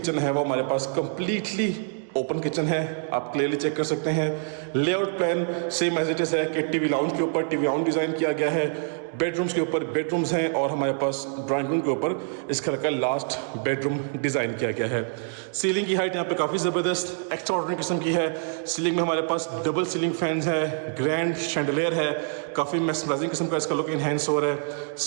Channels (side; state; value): left; silent; 58 dB below the other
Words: है वो हमारे पास कंप्लीटली ओपन किचन है। आप क्लियरली चेक कर सकते हैं। Layout plan same as it is है कि टीवी लाउंज के ऊपर टीवी लाउंज डिज़ाइन किया गया है, बेडरूम्स के ऊपर बेडरूम्स हैं और हमारे पास ड्राइंग रूम के ऊपर इस घर का लास्ट बेडरूम डिज़ाइन किया गया है। सीलिंग की हाइट यहाँ पे काफ़ी ज़बरदस्त एक्स्ट्रा ऑर्डिनरी किस्म की है। सीलिंग में हमारे पास डबल सीलिंग फैंस है, ग्रैंड शैंडलियर है, काफ़ी मेस्मराइजिंग किस्म का इसका लुक इन्हेंस हो रहा है।